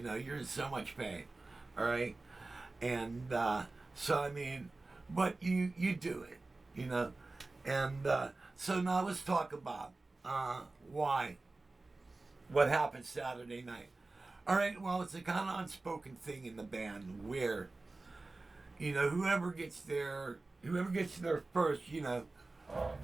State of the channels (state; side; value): quieter; left; 3.3 dB